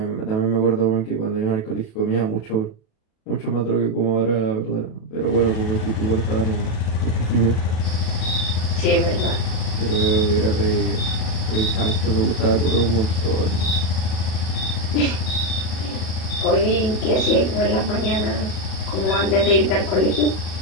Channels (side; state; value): right; late; 37 ms